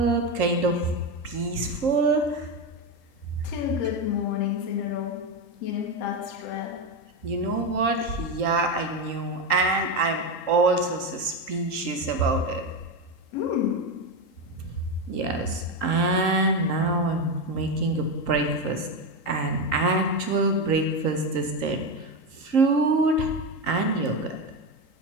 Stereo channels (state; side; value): late; right; 3.8 ms